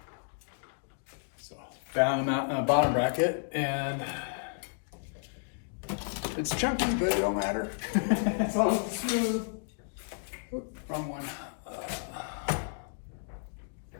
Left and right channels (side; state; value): right; silent; digital silence